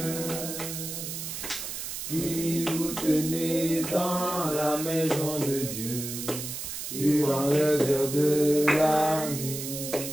qui vous tenez dans la maison de Dieu durant les heures de la nuit.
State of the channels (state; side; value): noise; right; hiss, 6 dB below the sound